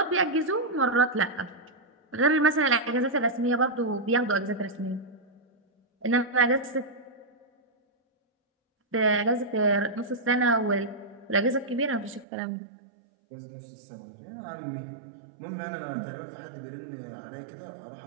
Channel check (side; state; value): left; drops out; at 12.2 s